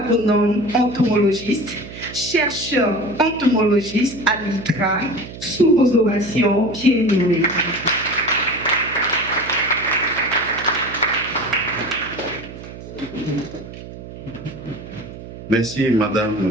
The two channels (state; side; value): noise; right; hum, 13 dB below the sound